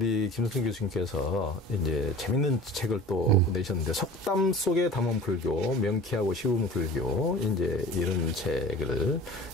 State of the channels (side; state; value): both; normal; correlation 0.41